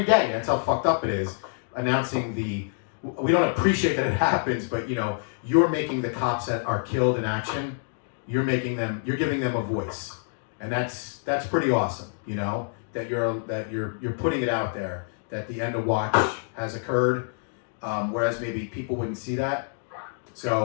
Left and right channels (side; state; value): right; silent; digital silence